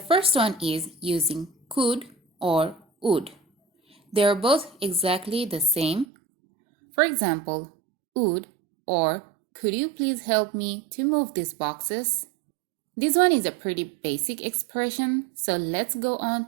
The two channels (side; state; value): left; drops out; at 6.1 s